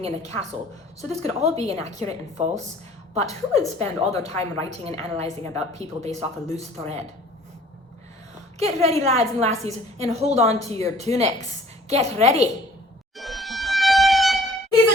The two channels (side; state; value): both; normal; correlation 0.52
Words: in a castle. So this could all be inaccurate and false. But who would spend all their time writing and analysing about people based off a loose thread? Get ready, lads and lassies, and hold on to your tunics. Get ready. He's